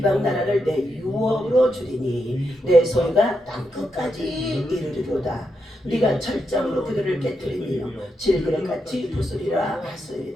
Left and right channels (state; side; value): normal; both; correlation 0.83